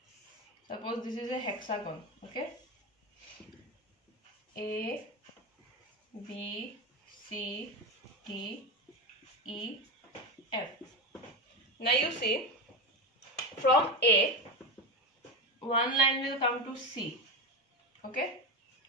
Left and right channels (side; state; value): both; normal; correlation 0.18